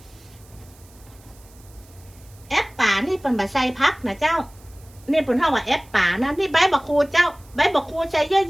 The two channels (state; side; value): noise; right; hiss, 27 dB below the sound